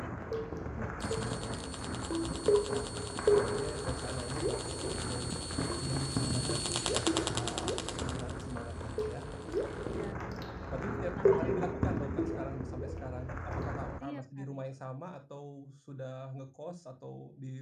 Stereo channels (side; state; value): both; identical; correlation 1.00